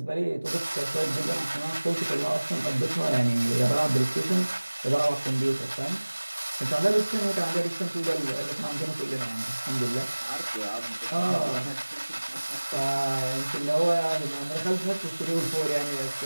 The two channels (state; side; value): inverted; both; correlation -1.00